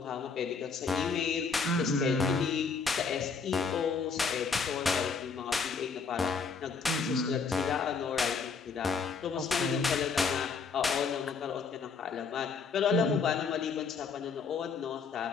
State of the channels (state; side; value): quieter; right; 5.1 dB